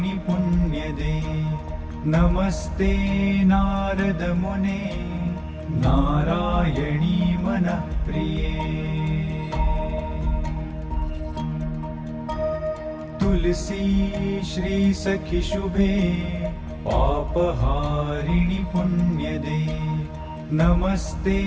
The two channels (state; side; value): identical; both; correlation 1.00